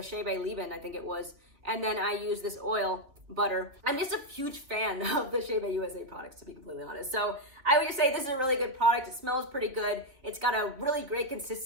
Chebe leave-in, I think it was, and then I use this oil butter. I'm just a huge fan of the Chebe USA products, to be completely honest. So I would just say this is a really good product. It smells pretty good. It's got a really great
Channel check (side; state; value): left; late; 3.7 ms